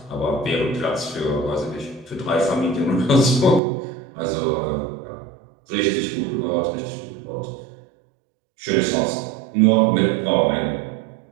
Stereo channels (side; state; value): left; drops out; at 3.6 s